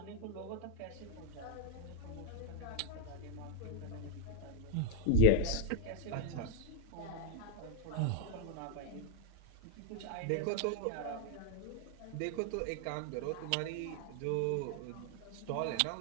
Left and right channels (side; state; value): both; different; correlation 0.01